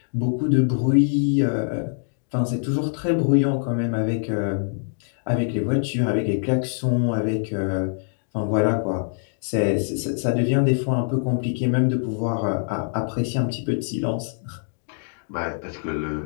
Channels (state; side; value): silent; right; digital silence